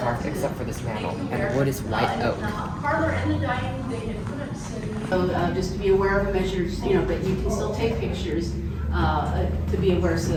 except for this mantle, and the wood is white oak. parlor and the dining room, they had put up so just to be aware of measures, you know, but you can still take pictures to be aware so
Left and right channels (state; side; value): identical; both; correlation 1.00